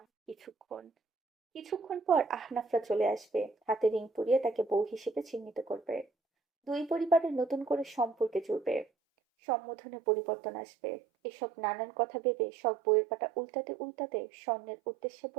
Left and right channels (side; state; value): left; drops out; at 8.8 s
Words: কিছুক্ষণ পর আহনাফরা চলে আসবে, হাতে রিং পরিয়ে তাকে বউ হিসেবে চিহ্নিত করবে। দুই পরিবারের নতুন করে সম্পর্কে জুড়বে। সম্বোধনে পরিবর্তন আসবে। এসব নানান কথা ভেবে সব বইয়ের পাতা উল্টাতে উল্টাতে স্বর্ণের উদ্দেশ্যে